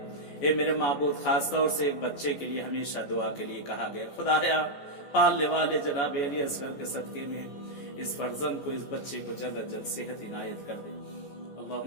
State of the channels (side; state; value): right; late; 14 ms